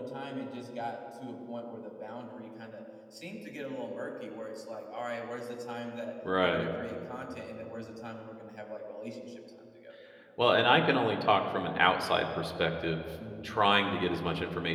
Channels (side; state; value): both; identical; correlation 1.00